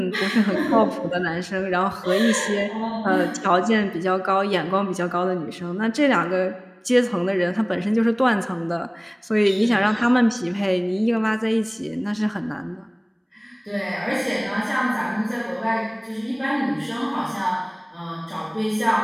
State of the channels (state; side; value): identical; both; correlation 1.00